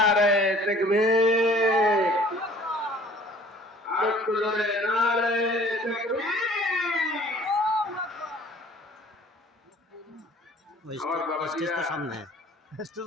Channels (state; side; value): normal; both; correlation 0.52